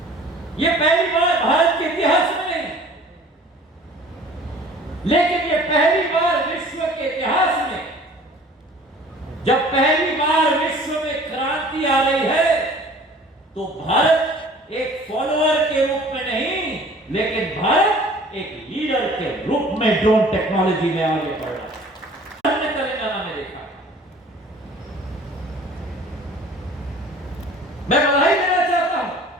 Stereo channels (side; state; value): both; normal; correlation 0.49